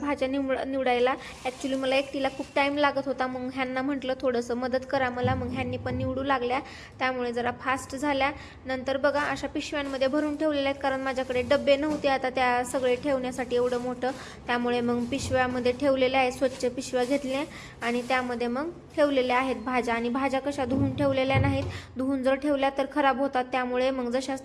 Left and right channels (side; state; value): both; identical; correlation 1.00